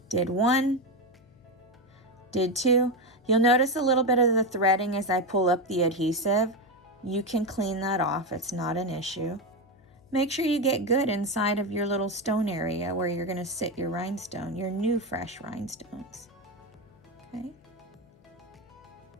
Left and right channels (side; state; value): left; noise; hum, 29 dB below the sound